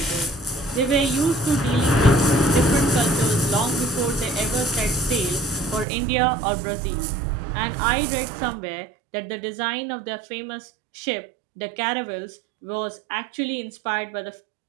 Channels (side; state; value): left; drops out; at 5.9 s